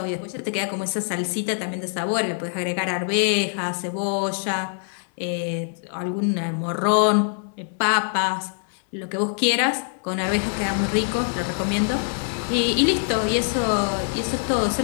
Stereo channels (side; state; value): right; silent; 63 dB below the other